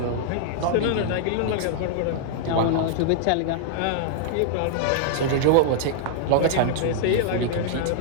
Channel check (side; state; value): both; different; correlation -0.01